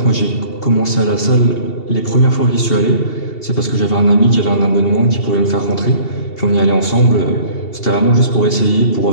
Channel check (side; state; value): right; late; 2.7 ms